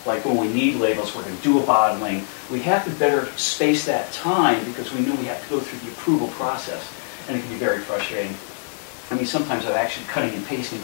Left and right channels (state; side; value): silent; right; 60 dB below the other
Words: Like when we need labels, we're going to do a bottling. We have to better space that time because we knew we have to go through the approval process, and it can be very frustrating. I mean, sometimes I'm actually cutting and pasting